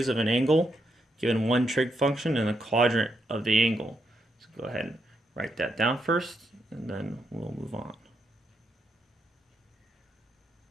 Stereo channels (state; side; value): normal; both; correlation 0.80